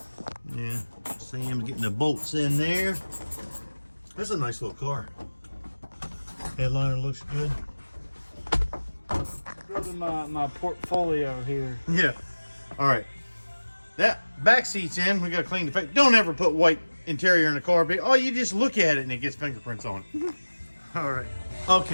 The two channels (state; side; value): inverted; both; correlation -1.00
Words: Yeah, Sam's getting the bolts in there. That's a nice little car. Headliner looks good. Building my portfolio here. Yeah. All right. That back seat's in. We got to clean the face. Don't ever put white interior in the car. But, oh, you just look at it and it gets fingerprints on it. All right.